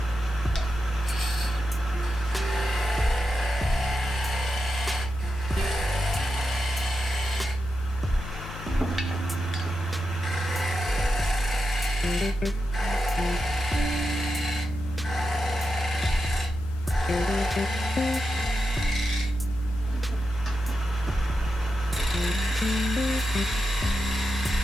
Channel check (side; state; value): both; normal; correlation 0.88